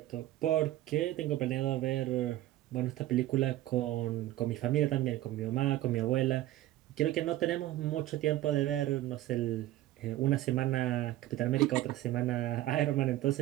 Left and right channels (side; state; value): left; quieter; 15.1 dB